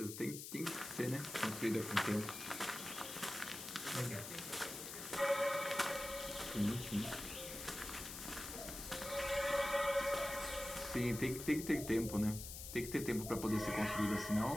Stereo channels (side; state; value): left; noise; hiss, 9 dB below the sound